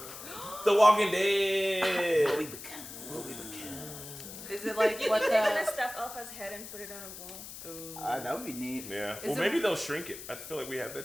The Walking Dead. What we become. Is it like You what think they're the? gonna stuff Alpha's head and put it on a wall? That would be neat. Yeah. Is Well, it- maybe they'll shrink it. I feel like we have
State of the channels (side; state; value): left; noise; hiss, 12 dB below the sound